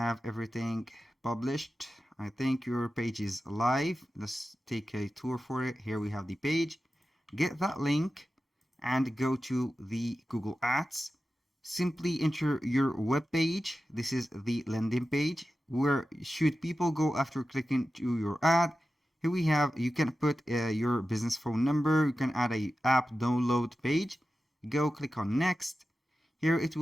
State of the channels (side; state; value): both; normal; correlation 0.93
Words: everything published. I think your page is live. Let's take a tour for it. Here we have the page. Get that link and go to the Google Ads. Simply enter your web page. This is the landing page. Where should people go after clicking to your ad? Here we have, you can put your business phone number. You can add a app download page. Go click on next. Here it